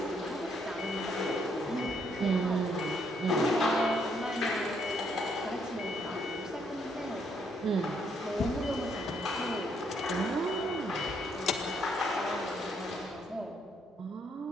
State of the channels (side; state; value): both; normal; correlation 0.72